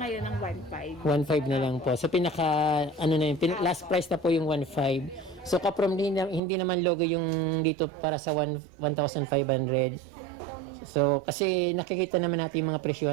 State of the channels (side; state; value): left; drops out; at 6.4 s